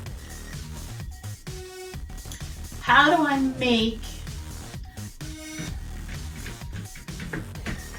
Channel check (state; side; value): identical; both; correlation 1.00